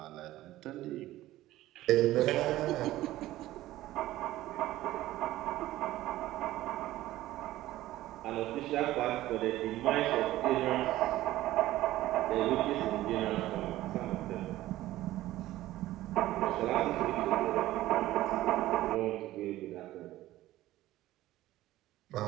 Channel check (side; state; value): left; quieter; 15.6 dB